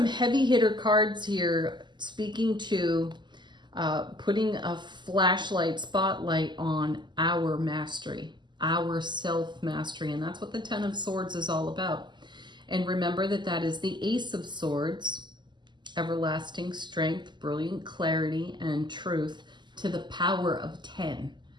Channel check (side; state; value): left; late; 0.21 ms